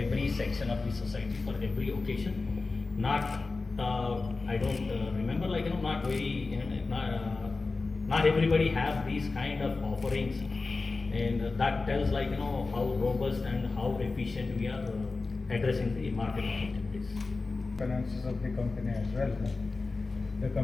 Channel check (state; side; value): quieter; right; 3.8 dB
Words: section of the society for every occasion. Not, I don't remember, like, not very, not everybody have these kind of offerings, and that tells like, how robust and how efficient we are addressing the market opportunities. Finances of the company as well. The